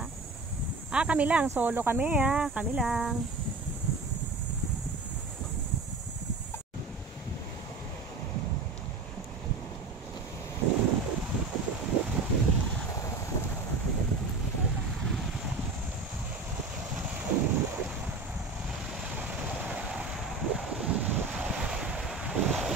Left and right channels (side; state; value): left; quieter; 3.7 dB